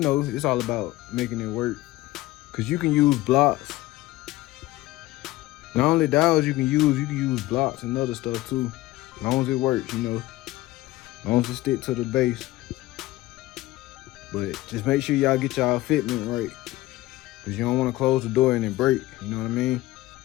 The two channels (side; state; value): right; quieter; 17.7 dB